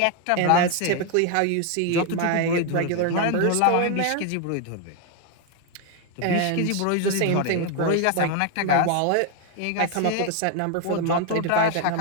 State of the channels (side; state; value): both; different; correlation 0.01